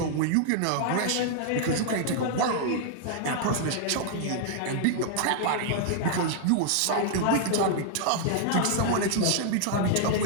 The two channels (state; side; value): different; both; correlation -0.01